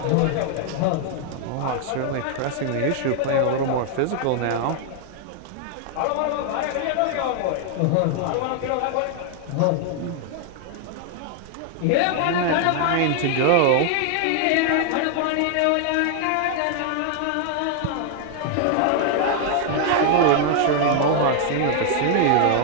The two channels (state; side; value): different; both; correlation 0.00